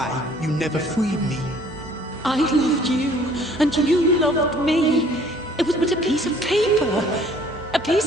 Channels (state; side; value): normal; both; correlation 0.57